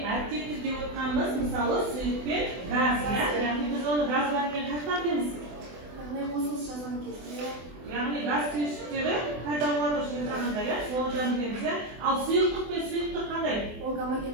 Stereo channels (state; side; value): late; left; 24 ms